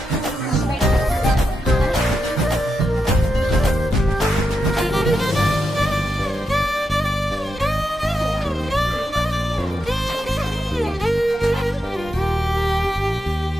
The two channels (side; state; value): both; normal; correlation 0.86